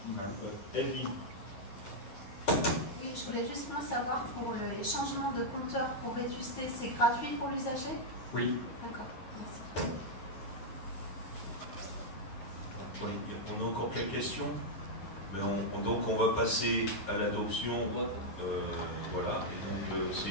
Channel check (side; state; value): right; late; 9.9 ms